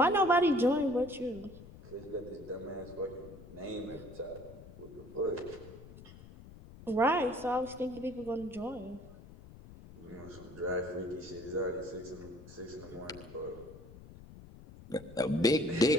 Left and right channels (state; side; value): noise; left; rumble, 17 dB below the sound